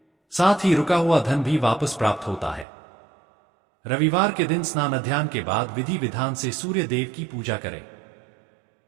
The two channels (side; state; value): left; drops out; at 2.7 s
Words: साथ ही रुका हुआ धन भी वापस प्राप्त होता है। रविवार के दिन स्नान ध्यान के बाद विधि विधान से सूर्य देव की पूजा करें।